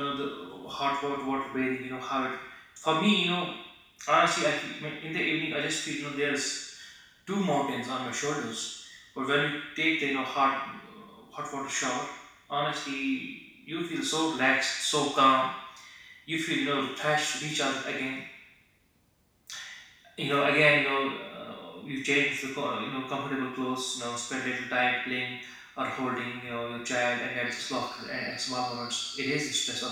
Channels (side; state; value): both; identical; correlation 1.00